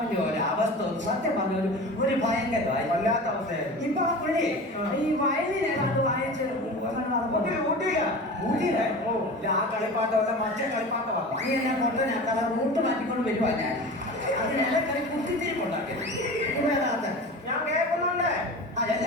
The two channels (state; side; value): normal; both; correlation 0.33